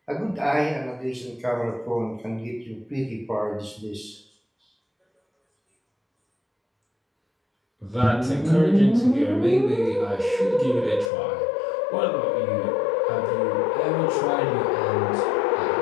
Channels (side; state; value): right; drops out; at 11.1 s